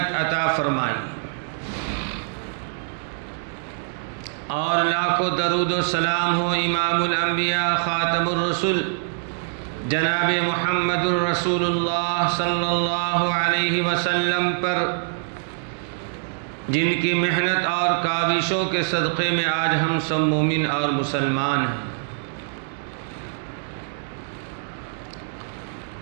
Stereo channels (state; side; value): silent; left; digital silence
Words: عطا فرمائی، اور لاکھوں درود و سلام ہو امام الانبیاء خاتم الرسل جناب محمد الرسول اللہ صلی اللہ علیہ وسلم پر، جن کی محنت اور کاوشوں کے صدقے میں آج ہم سب مومن اور مسلمان ہیں۔